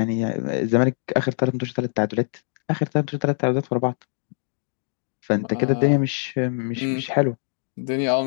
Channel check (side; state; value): right; silent; digital silence